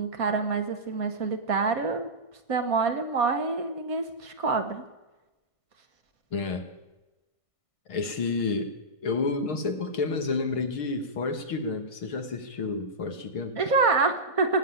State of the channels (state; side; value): late; right; 1.5 ms